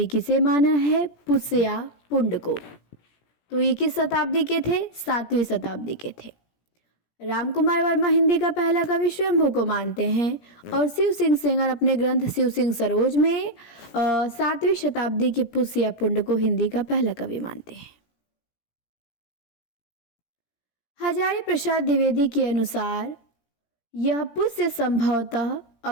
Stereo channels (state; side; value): late; right; 17 ms